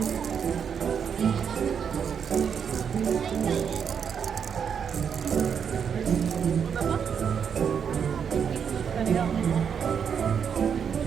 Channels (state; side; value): quieter; left; 7.3 dB